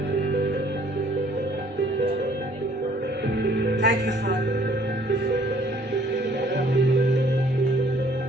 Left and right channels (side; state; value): both; normal; correlation 0.59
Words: Thank you, Father.